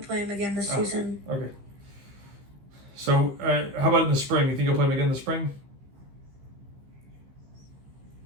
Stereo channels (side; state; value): left; late; 15 ms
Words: play him again this season. Okay. So, how about in the spring? You think you'll play him again in the spring?